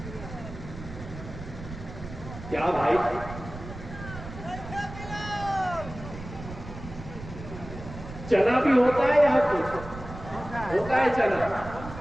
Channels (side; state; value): right; noise; rumble, 12 dB below the sound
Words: क्या भाई? चना भी होता है यहाँ कुछ होता है चना,